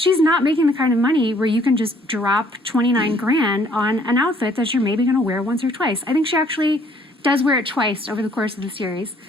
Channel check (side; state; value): both; normal; correlation 0.62